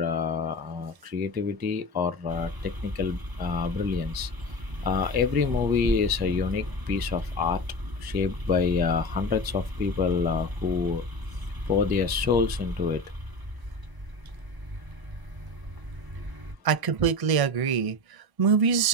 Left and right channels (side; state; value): left; late; 1.0 ms